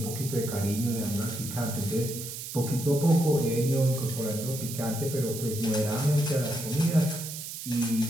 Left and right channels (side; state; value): right; noise; hiss, 8 dB below the sound